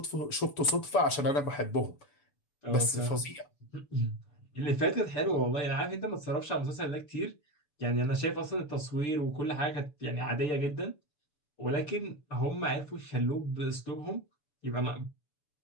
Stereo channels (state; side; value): late; right; 7.0 ms